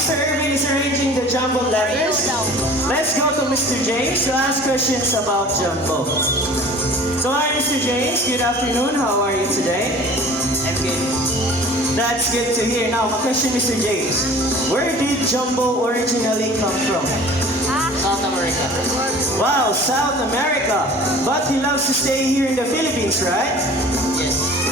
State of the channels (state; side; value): normal; both; correlation 0.45